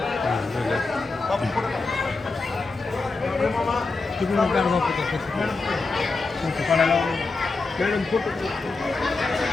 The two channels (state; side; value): quieter; right; 3.8 dB